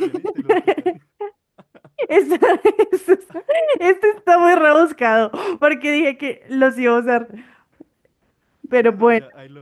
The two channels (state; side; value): identical; both; correlation 1.00